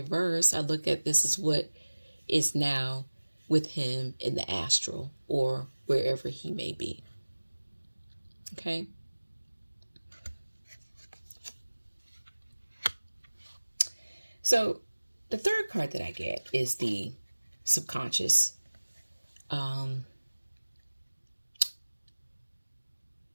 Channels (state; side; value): inverted; both; correlation -1.00